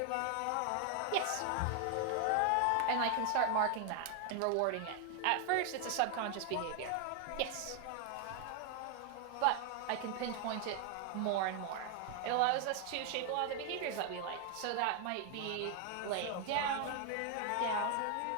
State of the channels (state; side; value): different; both; correlation 0.00